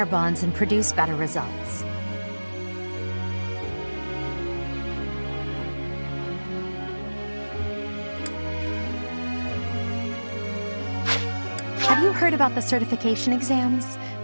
bonds and produce better results. Have you heard about the certification exams?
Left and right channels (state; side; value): inverted; both; correlation -1.00